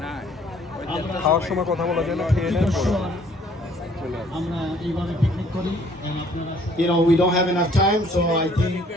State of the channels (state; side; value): normal; both; correlation 0.59